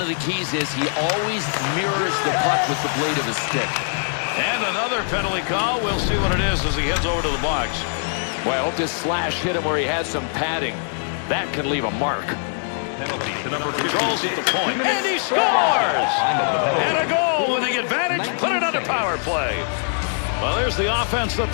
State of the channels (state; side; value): silent; right; digital silence